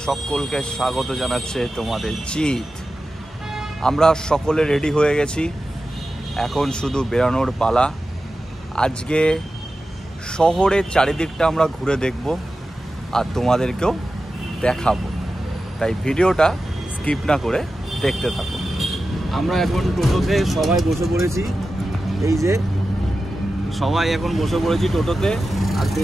সকলকে স্বাগত জানাচ্ছে তোমাদের জিত। আমরা সকলে রেডি হয়ে গেছি, এখন শুধু বেরানোর পালা। আজকে শহরের চারিদিকটা আমরা ঘুরে দেখব আর তোমাদেরকেও দেখাবো, তাই ভিডিওটা স্কিপ না করে দেখতে থাকো। আমরা এখন টোটোতে সবাই বসে পড়েছি, এই যে সবাই এখন বসে পড়েছি টোটোতে। আর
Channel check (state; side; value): normal; both; correlation 0.93